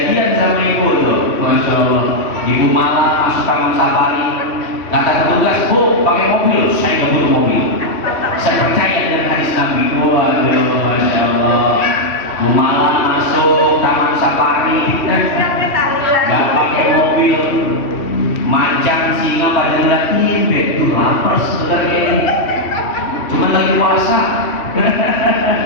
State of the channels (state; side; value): late; right; 3.1 ms